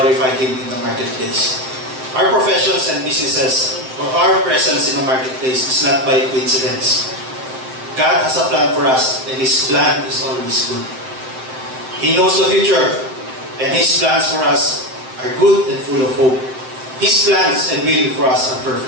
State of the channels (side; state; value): left; late; 7.7 ms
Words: Him in the marketplace. Our professions and businesses, or our presence in the marketplace is not by coincidence. God has a plan for us, and His plan is always good. He knows the future, and His plans for us are good and full of hope. His plans and will for us are